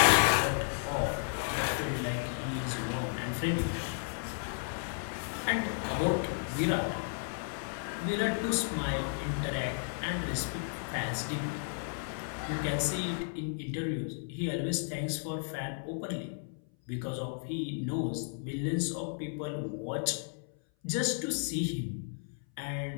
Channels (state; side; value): silent; right; 55 dB below the other